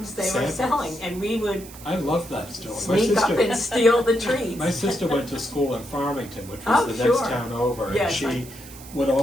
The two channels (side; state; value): right; noise; hiss, 18 dB below the sound